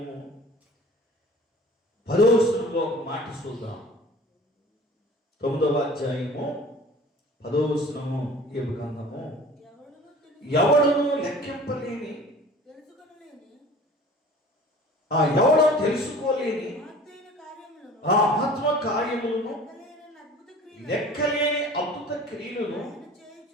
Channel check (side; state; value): both; normal; correlation 0.44